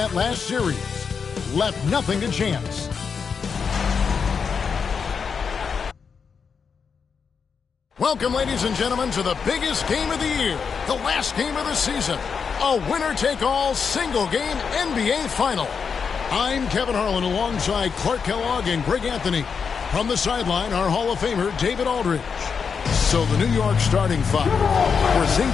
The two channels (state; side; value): quieter; right; 6.0 dB